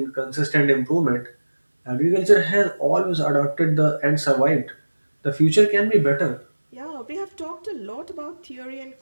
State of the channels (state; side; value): inverted; both; correlation -1.00